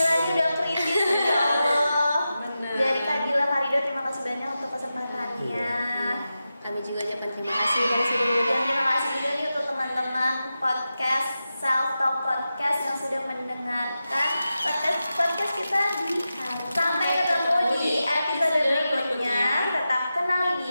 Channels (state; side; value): inverted; both; correlation -0.92